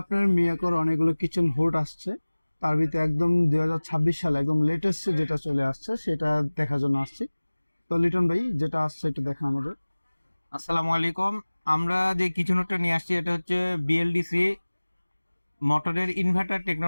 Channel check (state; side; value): inverted; both; correlation -1.00